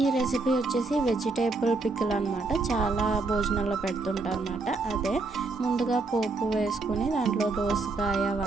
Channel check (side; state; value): left; quieter; 3.6 dB